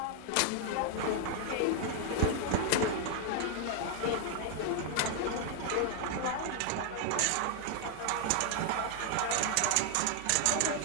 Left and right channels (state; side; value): different; both; correlation 0.00